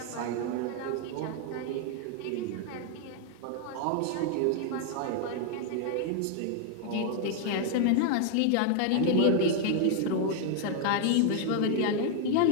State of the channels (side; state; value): both; different; correlation 0.00